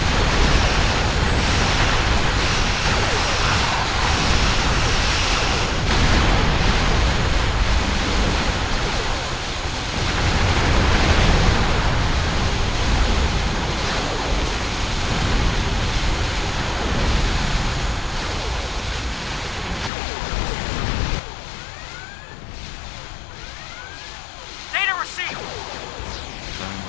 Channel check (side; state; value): right; drops out; at 19.9 s